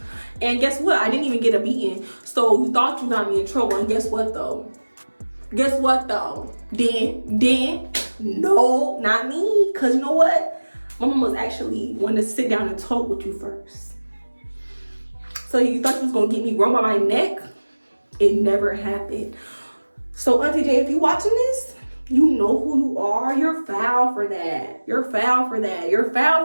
And guess what? I didn't even get a beating. So you thought you got me in trouble, and guess what though? Then, no, not me. Cause you know what? My mom was actually wanting to sit down and talk with you first. So you thought you was gonna get me run by my neck? It never happened. So Auntie J, if you watching this, you know who you are. You're foul for that. You're foul for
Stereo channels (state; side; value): inverted; both; correlation -1.00